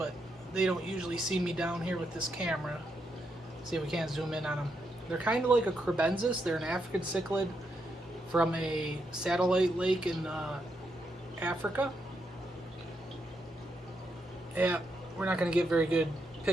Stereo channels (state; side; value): normal; both; correlation 0.81